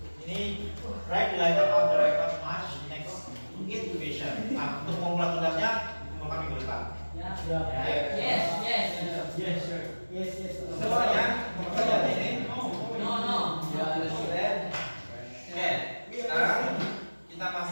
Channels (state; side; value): inverted; both; correlation -1.00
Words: Ini write the letter of the record match next intuition. Nah, untuk membuat tugasnya kumpulkan minggu depan. Oke. Yes. Yes. Semuanya pekerjaan ini. No. Oke, sekarang kita